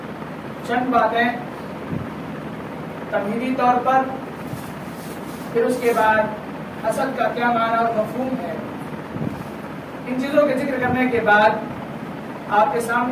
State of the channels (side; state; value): both; identical; correlation 1.00